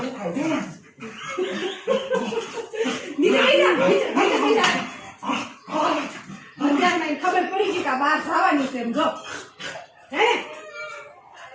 ખબર પડી ગઈ કે બહાર જવાની છે એમ, જો હે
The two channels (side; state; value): both; identical; correlation 1.00